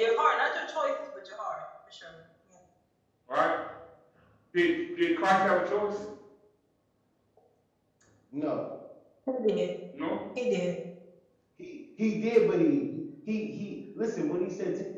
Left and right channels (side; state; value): both; identical; correlation 1.00